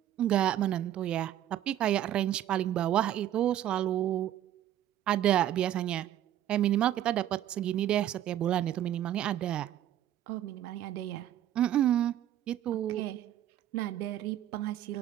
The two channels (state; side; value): quieter; left; 11.8 dB